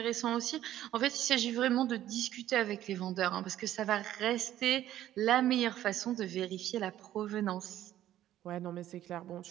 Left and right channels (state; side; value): quieter; left; 12.8 dB